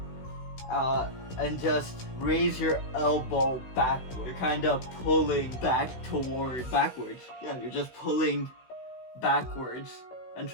and just raise your elbow backward. You're kind of pulling backwards. Yeah, you're just pulling backwards and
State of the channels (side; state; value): right; late; 16 ms